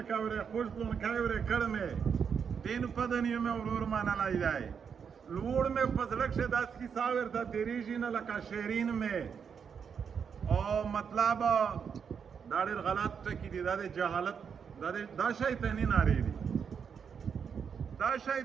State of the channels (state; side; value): quieter; left; 6.8 dB